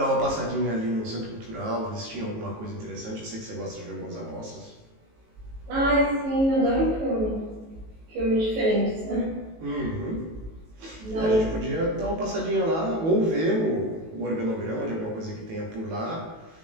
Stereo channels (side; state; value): left; late; 18 ms